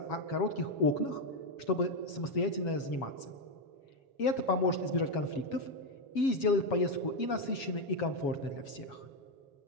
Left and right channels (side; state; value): right; late; 7.3 ms